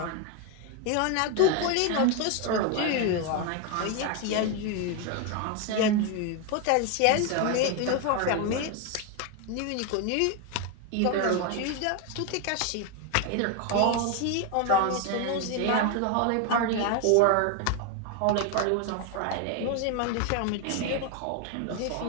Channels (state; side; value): different; both; correlation 0.01